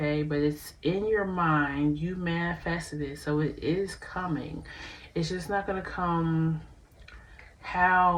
But it's in your mind. You manifested it, so it is coming. It's just not going to come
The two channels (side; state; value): both; identical; correlation 1.00